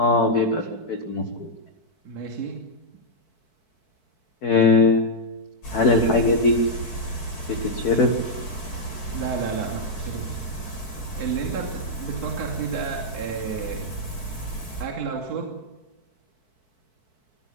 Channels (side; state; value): right; late; 4.6 ms